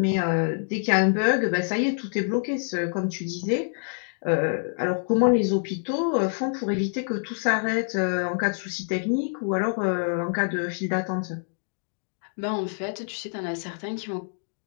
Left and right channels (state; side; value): silent; right; digital silence